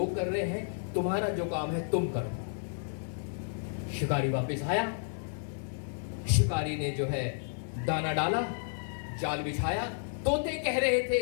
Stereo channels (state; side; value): silent; right; digital silence